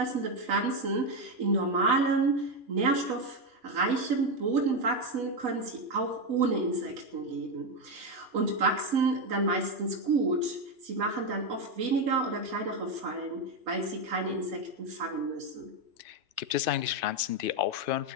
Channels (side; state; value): left; late; 2.5 ms